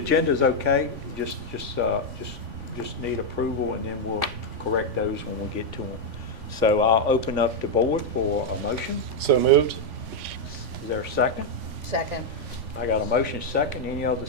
is okay. Just need approval, and then we'll correct those when we get to them. So I'll open up the board for a motion. So moved. Is there a second? Second. I got a motion second. Any other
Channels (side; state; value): left; late; 3.5 ms